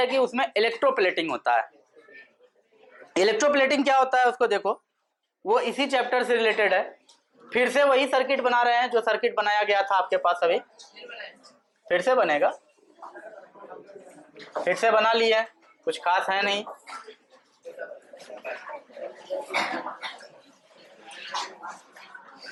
कि उसमें इलेक्ट्रोप्लेटिंग होता है। इलेक्ट्रोप्लेटिंग क्या होता है उसको देखो, वो इसी चैप्टर से रिलेटेड है। फिर से वही सर्किट बना रहे हैं जो सर्किट बनाया गया था आपके पास अभी, फिर से बनेगा, फिर से बना लिए, कुछ खास है नहीं।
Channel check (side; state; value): both; identical; correlation 1.00